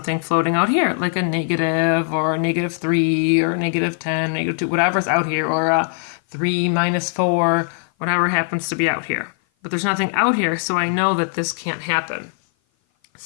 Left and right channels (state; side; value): silent; right; 56 dB below the other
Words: floating out here, like a negative or a negative 3 or a negative 10, negative 2, whatever's out here, or a 3 minus 4, whatever happens to be out here. but there's nothing out here, so I know that this can't happen.